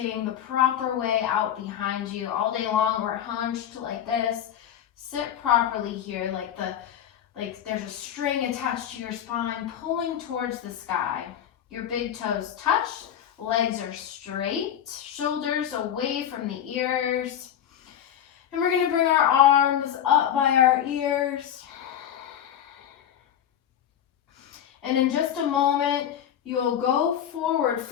the proper way out behind you. All day long we're hunched like this. Sit properly here like there's a string attached to your spine pulling towards the sky. Your big toes touch, legs are straight, shoulders away from the ears. And we're going to bring our arms up by our ears. And in just a moment, you'll go forward,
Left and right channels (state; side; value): quieter; right; 10.0 dB